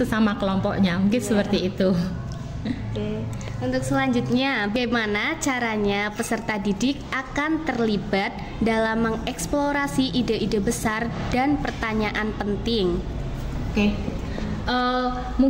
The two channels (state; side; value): identical; both; correlation 1.00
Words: kelompoknya, mungkin seperti itu. Oke. Untuk selanjutnya, bagaimana caranya peserta didik akan terlibat dalam mengeksplorasi ide-ide besar dan pertanyaan penting? Oke.